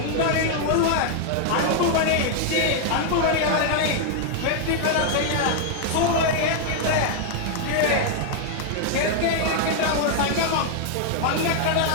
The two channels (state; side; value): different; both; correlation 0.00